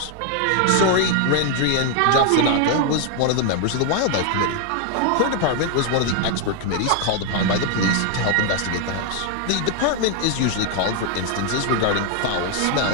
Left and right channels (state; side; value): different; both; correlation 0.00